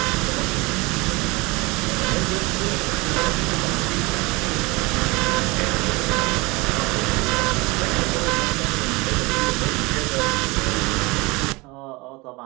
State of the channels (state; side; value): quieter; left; 24.9 dB